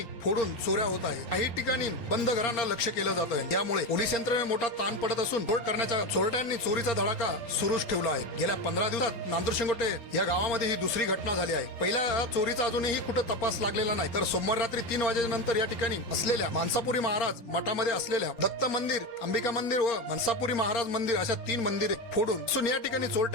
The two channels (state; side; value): late; right; 4.3 ms